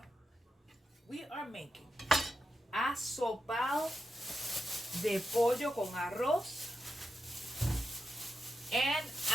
We are making asopao de pollo con arroz and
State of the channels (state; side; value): normal; both; correlation 0.87